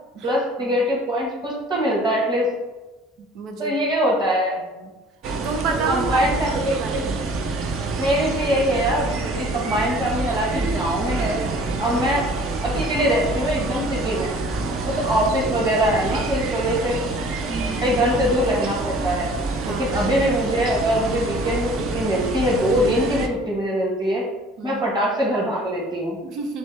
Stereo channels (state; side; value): normal; both; correlation 0.50